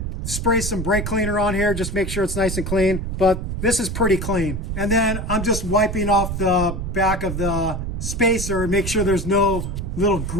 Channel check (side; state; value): right; noise; rumble, 4 dB below the sound